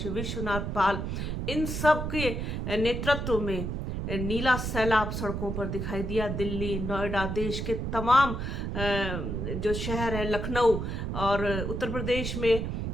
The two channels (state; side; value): noise; right; rumble, 3 dB below the sound